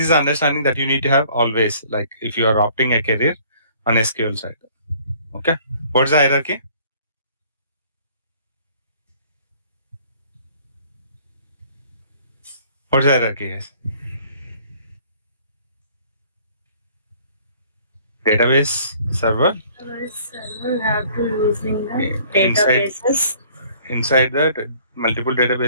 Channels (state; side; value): inverted; both; correlation -0.57